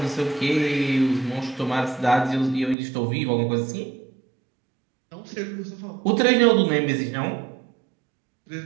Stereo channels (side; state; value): left; drops out; at 2.8 s